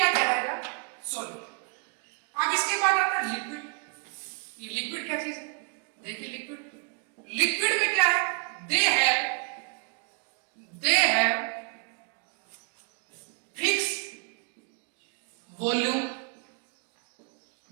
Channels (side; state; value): left; quieter; 38.1 dB